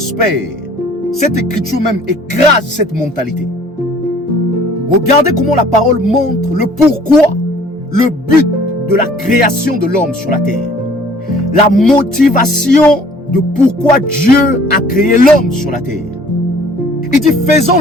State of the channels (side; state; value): both; normal; correlation 0.54